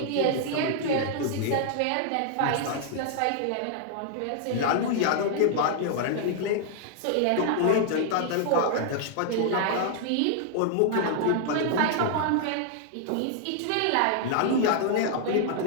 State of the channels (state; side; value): different; both; correlation -0.01